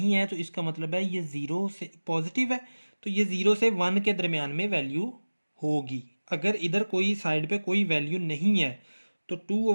है तो इसका मतलब है ये 0 से पॉजिटिव है, तो ये 0 से 1 के दरमियान में वैल्यू होगी। अगर इधर कोई साइड पे कोई वैल्यू नहीं है तो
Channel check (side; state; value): both; inverted; correlation -1.00